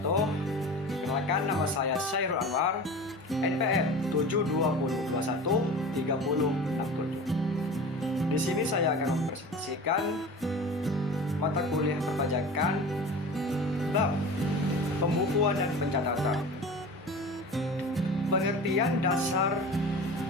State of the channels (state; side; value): normal; both; correlation 0.35